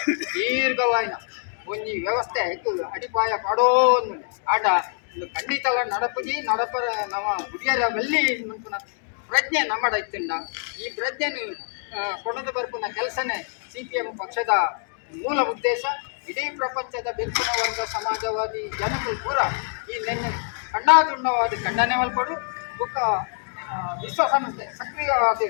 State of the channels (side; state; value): right; silent; 62 dB below the other